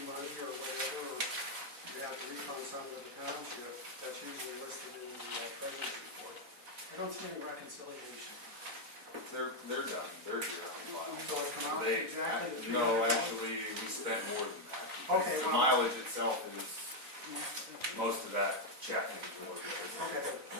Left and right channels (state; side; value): late; left; 3.9 ms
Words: money or whatever, or you have to refund some to the township, that's usually listed in the treasurer's report. I don't see any reconciliation. They're done, they're due on file. So it's come out They, exactly the no, $300? actually, we spent more than that. Okay, The well- mileage itself is, most of that checking for it. Okay,